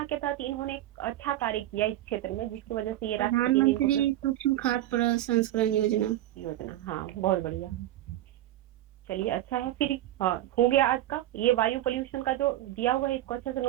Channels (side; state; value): left; quieter; 14.2 dB